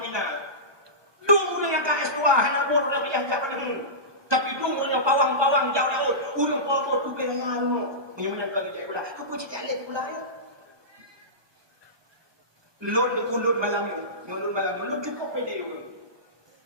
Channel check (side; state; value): left; late; 1.2 ms